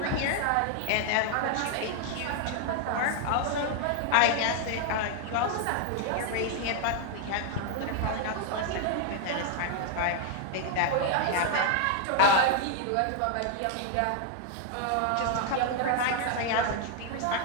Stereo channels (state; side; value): different; both; correlation 0.00